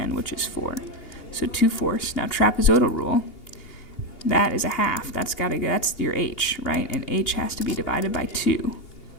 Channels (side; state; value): right; late; 2.8 ms